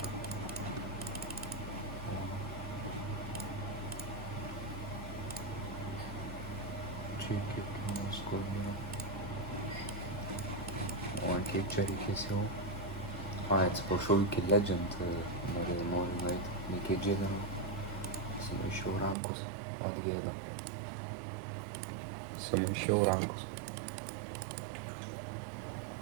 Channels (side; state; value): left; drops out; at 19.2 s